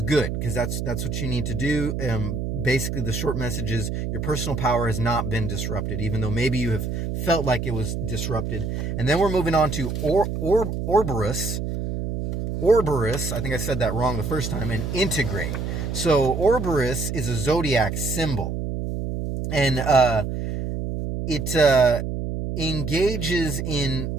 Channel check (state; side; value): noise; right; hum, 3 dB below the sound